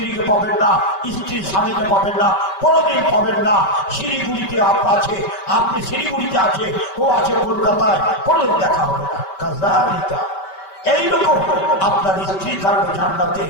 পাবেন না, স্ত্রীর স্বামীকে পাবেন না, কোনোদিন পাবেন না। শিলিগুড়িতে আছে, আপনি শিলিগুড়িতে আছে, ও আছে কলকাতায়, কোনোদিন দেখা হবে না। কাজালিকা, এইরকম আপনার স্ত্রী থাকবে জান্নাতে,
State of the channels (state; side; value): late; right; 5.2 ms